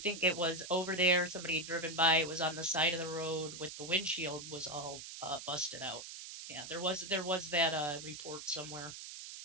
it was over there. Somebody had driven by. It was on the side of the road with the windshield was all busted out. Yeah, there was that report somewhere.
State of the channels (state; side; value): noise; right; hiss, 10 dB below the sound